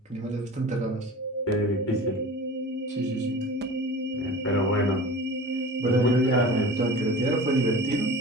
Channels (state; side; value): normal; both; correlation 0.37